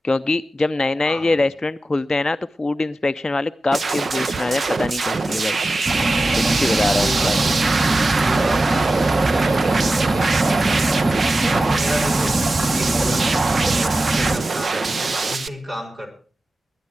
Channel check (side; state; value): both; normal; correlation 0.93